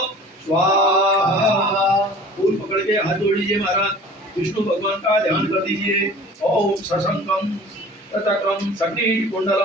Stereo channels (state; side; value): normal; both; correlation 0.45